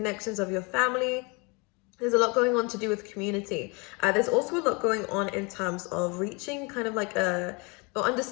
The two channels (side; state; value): right; quieter; 29.6 dB